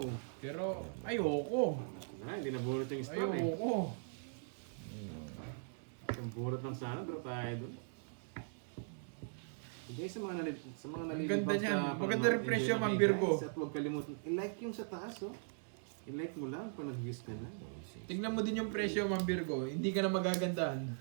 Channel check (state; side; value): silent; left; digital silence